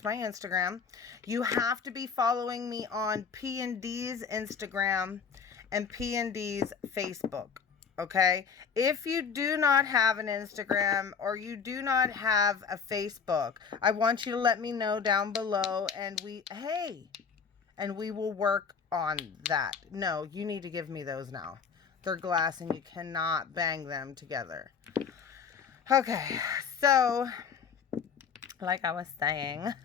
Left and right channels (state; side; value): quieter; right; 6.2 dB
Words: my Instagram. You have to be following me on P&D's Instagram and P&D's Facebook. Okay? If you do not have an Instagram or you do not have a Facebook, I want you to let me know down below, and we will work on that. No, you need to give me those now. They're glass and you cannot bang them together. Okay, so like I was saying,